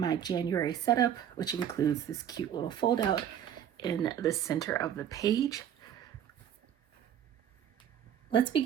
January setup, which includes this cute little fold out in the center of the page. Let's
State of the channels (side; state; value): left; quieter; 9.6 dB